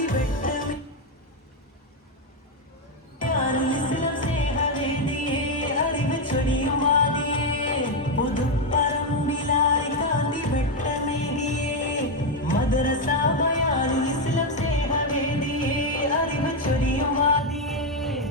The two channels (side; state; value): both; normal; correlation 0.05